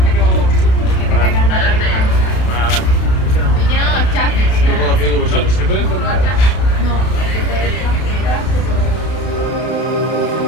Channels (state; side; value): late; right; 32 ms